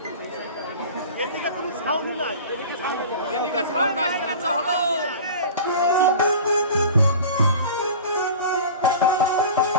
এদিকে সাউন্ড আসছে না তো হলো।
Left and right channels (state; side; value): inverted; both; correlation -0.37